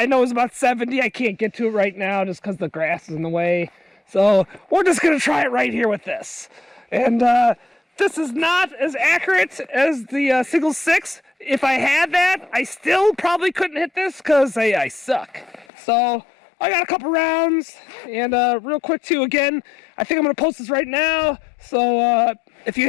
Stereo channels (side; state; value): right; drops out; at 15.7 s